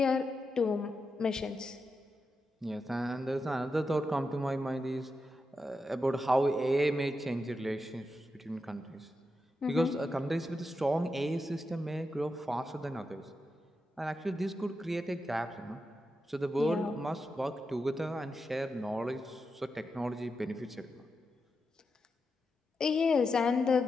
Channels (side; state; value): both; normal; correlation 0.87